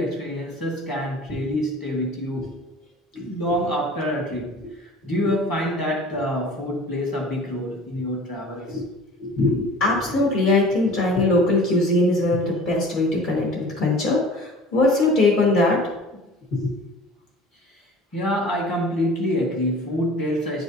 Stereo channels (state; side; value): normal; both; correlation 0.44